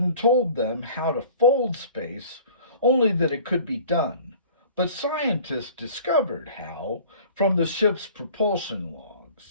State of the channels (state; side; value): inverted; both; correlation -0.47